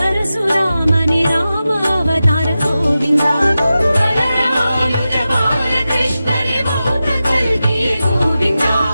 ராம அவதார கோவிந்தா. பலராமானுஜ பாலகிருஷ்ணனி பௌத்த கல்கி கோவிந்தா.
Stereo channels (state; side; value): inverted; both; correlation -0.93